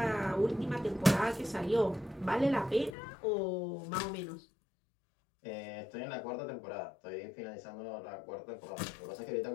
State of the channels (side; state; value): right; drops out; at 3.0 s